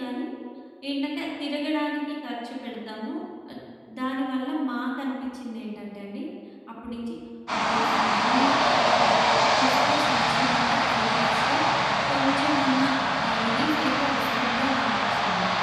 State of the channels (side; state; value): both; identical; correlation 1.00